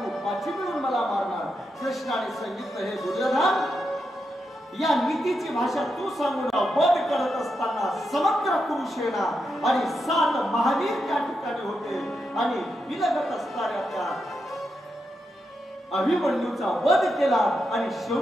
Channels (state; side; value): normal; both; correlation 0.85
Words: 5 मिळून मला मारणार? कृष्णाने सांगितलं, हे दुर्योधन, या नीतीची भाषा तू सांगून वध करत असताना समग्र कुरुसेना आणि 7 महावीर त्या ठिकाणी होते आणि विलगत असणाऱ्या त्या अभिमन्यूचा वध केला आणि